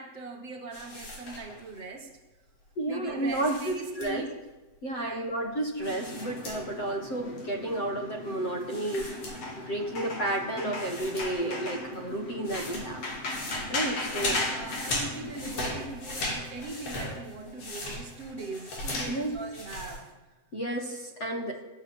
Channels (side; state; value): right; late; 7.8 ms